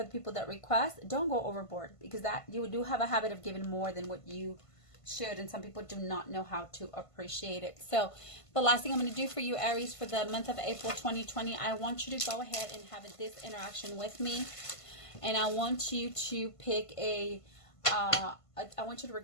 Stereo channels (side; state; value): right; late; 1.5 ms